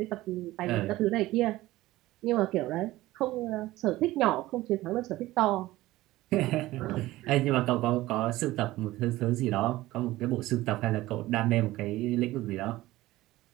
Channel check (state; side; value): quieter; left; 17.3 dB